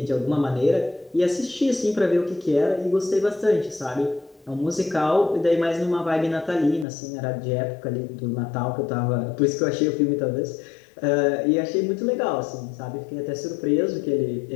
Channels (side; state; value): right; drops out; at 6.9 s